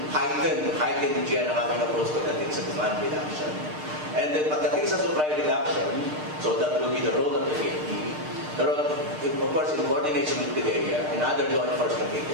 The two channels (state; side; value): late; left; 6.6 ms